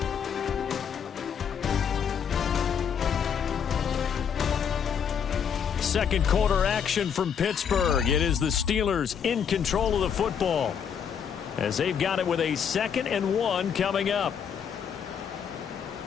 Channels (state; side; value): quieter; right; 7.6 dB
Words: Second quarter action from Pittsburgh. It is the Steelers in control of the football as they've got it with a 2nd and 1 coming up.